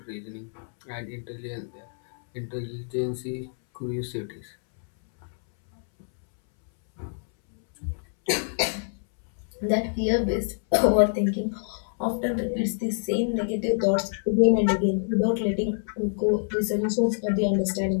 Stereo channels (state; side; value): silent; right; 61 dB below the other